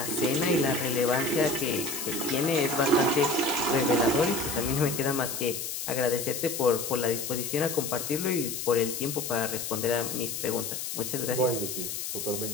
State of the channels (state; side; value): noise; left; hiss, 5 dB below the sound